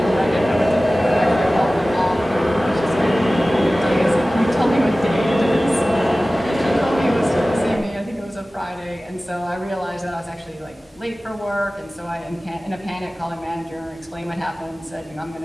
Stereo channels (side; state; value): both; normal; correlation 0.97